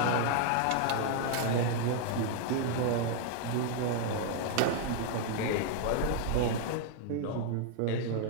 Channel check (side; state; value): both; different; correlation 0.00